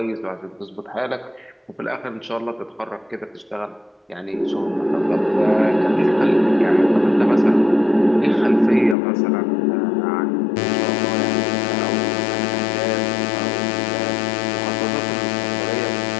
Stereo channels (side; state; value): right; drops out; at 9.0 s